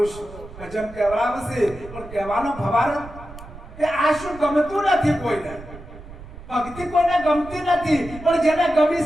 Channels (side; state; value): right; noise; rumble, 16 dB below the sound